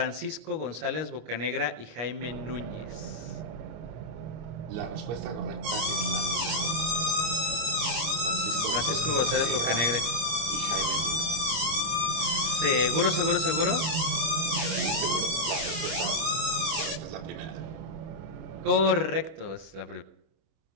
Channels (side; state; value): left; late; 25 ms